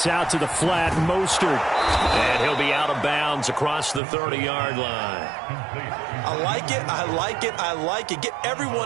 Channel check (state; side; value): drops out; left; at 4.0 s